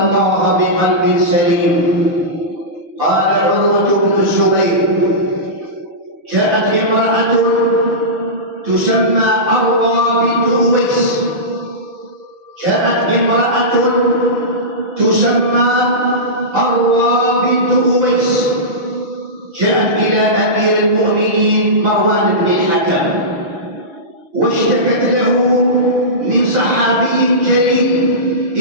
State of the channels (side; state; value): left; late; 5.8 ms